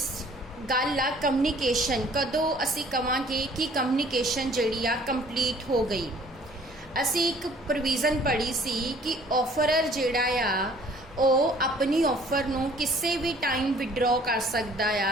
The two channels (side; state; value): both; normal; correlation 0.55